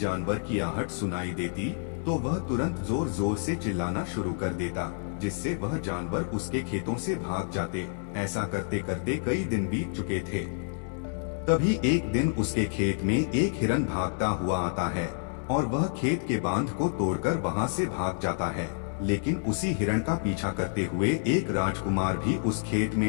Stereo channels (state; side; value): silent; right; digital silence